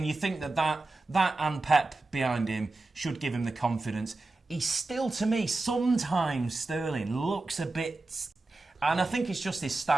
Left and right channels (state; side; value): quieter; left; 3.2 dB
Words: you think that and Pep behind him should give him the confidence. He's still, to me, sometimes Sterling looks a bit. And I think it's just his